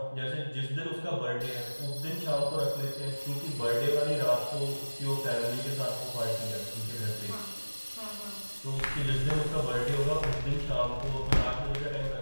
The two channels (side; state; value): both; inverted; correlation -1.00